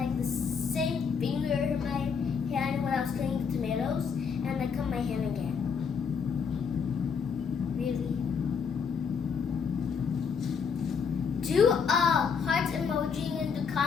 the same finger in my hand when I was cutting the tomatoes, and I cut my hand again. Really? Do a heart emoji in the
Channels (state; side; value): quieter; right; 6.2 dB